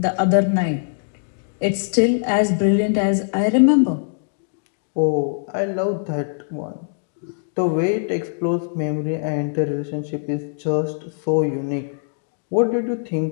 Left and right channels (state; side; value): silent; right; digital silence